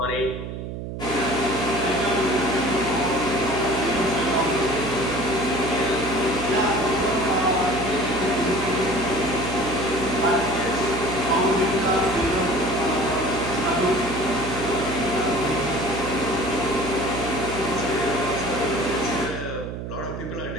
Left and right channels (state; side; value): noise; right; hum, 7 dB below the sound